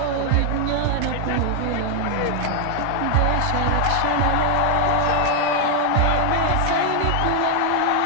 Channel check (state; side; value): different; both; correlation 0.00